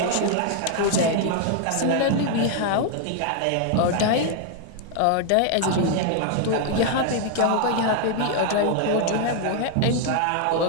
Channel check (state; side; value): different; both; correlation 0.00